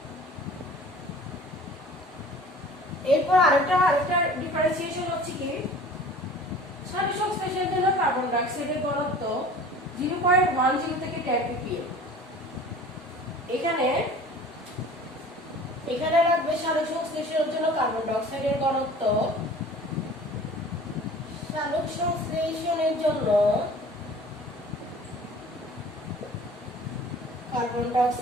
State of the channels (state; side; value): normal; both; correlation 0.44